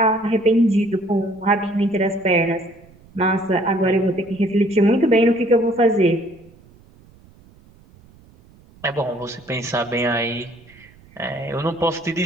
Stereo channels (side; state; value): right; noise; rumble, 27 dB below the sound